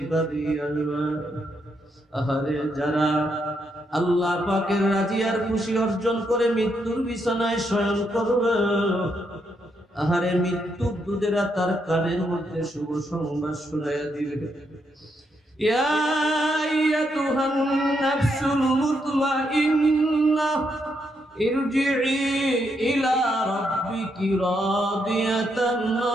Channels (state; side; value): normal; both; correlation 0.78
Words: আসবে। আহারে, যারা আল্লাহ পাকের রাজি আর খুশি অর্জন করে মৃত্যুর বিছানায় শয়ন করবে, আহারে, মৃত্যুর দূতেরা তার কানের মধ্যে শুভ সংবাদ শোনাইয়া দিবে। ইয়া আইয়াতুহান নাফসুল মুতমাইন্নাহ ইরজিই ইলা রাব্বিকি রাদিয়াতান